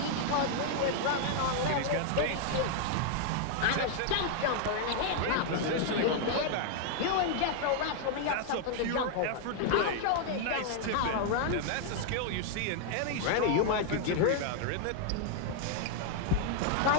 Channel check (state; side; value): different; both; correlation 0.00